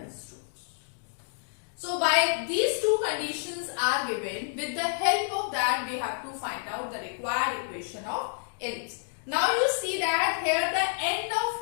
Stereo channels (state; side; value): silent; right; digital silence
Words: 2. So by these two conditions are given, with the help of that we have to find out the required equation of ellipse. Now you see that here the end